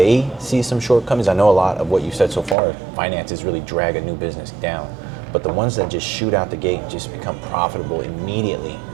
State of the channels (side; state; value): left; drops out; at 2.6 s